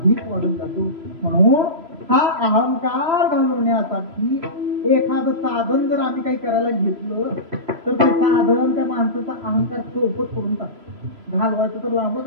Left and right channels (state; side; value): late; left; 3.0 ms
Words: वाढून जातो. म्हणून हा अहंकार घालवण्यासाठी एखादं साधन जर आम्ही काही करायला घेतलं तर ते साधन त्या माणसाचा अहंकार चौपट करून टाकतो. घालवायचं तर लांबच